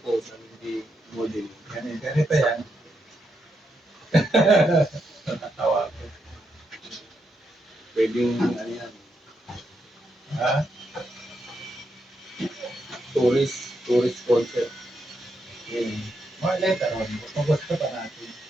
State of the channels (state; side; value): normal; both; correlation 0.81